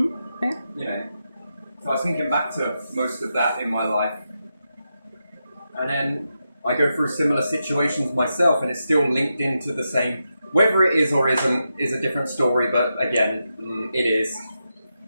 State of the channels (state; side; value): inverted; both; correlation -0.87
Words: know. So I was thinking back to most of that in my life. And then I go through similar situations myself, and it's still linked into the same. Whether it is or isn't is a different story, but again, it is.